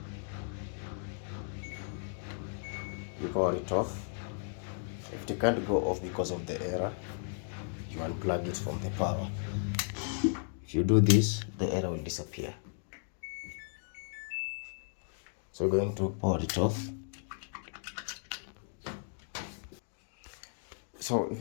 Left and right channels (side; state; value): right; silent; digital silence